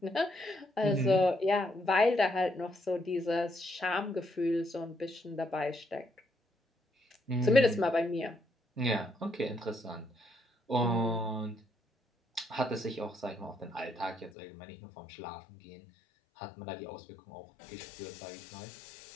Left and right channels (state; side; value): drops out; right; at 14.3 s